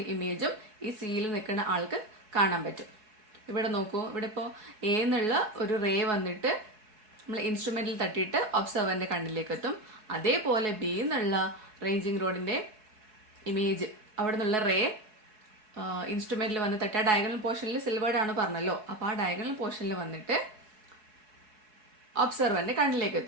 ഇമേജും ഈ സിയിൽ നിൽക്കുന്ന ആൾക്ക് കാണാൻ പറ്റും. ഇവിടെ നോക്കൂ, ഇവിടെ ഇപ്പോൾ എ എന്നുള്ള ഒരു റേ വന്നിട്ട് നമ്മൾ ഇൻസ്ട്രുമെൻറ്റിൽ തട്ടിയിട്ട് ഒബ്സർവറിൻ്റെ കണ്ണിലേക്ക് എത്തും. അതേപോലെ ബി എന്നുള്ള റേഞ്ചിങ് റോഡിൻ്റെ ഇമേജ് അവിടെ നിന്നുള്ള റേ ഇൻസ്ട്രുമെൻറ്റിൽ വന്ന് തട്ടുക. ഡയഗണൽ പോർഷനിൽ സിൽവേർഡ് ആണ് പറഞ്ഞല്ലോ, അപ്പോൾ ആ ഡയഗണൽ പോർഷനിൽ വന്നിട്ട് ഒബ്സർവറിൻ്റെ കണ്ണിലേക്ക്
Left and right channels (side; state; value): left; late; 4.7 ms